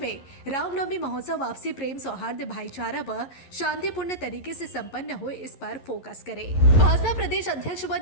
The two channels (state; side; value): late; right; 11 ms